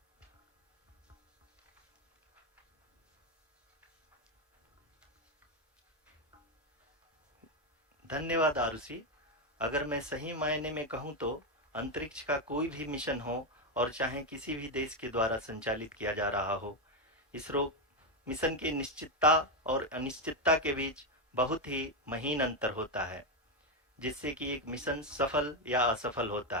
धन्यवाद आरुषि। अगर मैं सही मायने में कहूं तो अंतरिक्ष का कोई भी मिशन हो और चाहे किसी भी देश के द्वारा संचालित किया जा रहा हो, इसरो मिशन की निश्चितता और अनिश्चितता के बीच बहुत ही महीन अंतर होता है, जिससे कि एक मिशन सफल या असफल होता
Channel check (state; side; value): normal; both; correlation 0.07